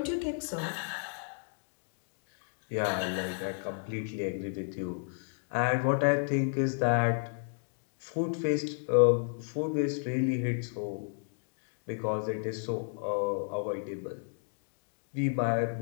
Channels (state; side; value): silent; right; digital silence